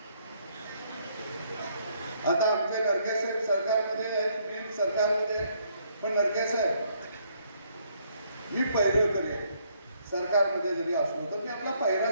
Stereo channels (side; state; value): both; inverted; correlation -0.69